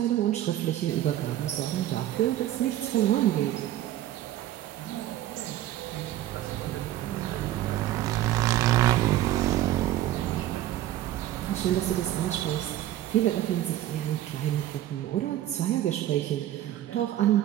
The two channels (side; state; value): left; quieter; 13.5 dB